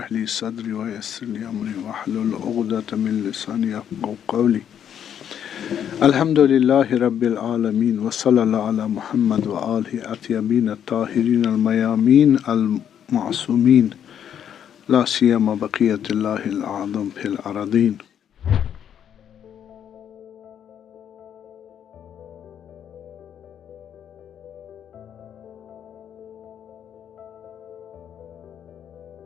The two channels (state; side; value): quieter; right; 9.2 dB